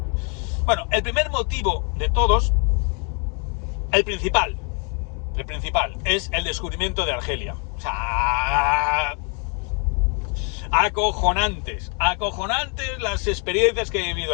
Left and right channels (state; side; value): quieter; right; 37.8 dB